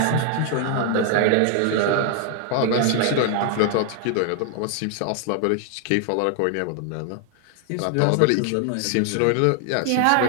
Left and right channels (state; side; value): different; both; correlation 0.00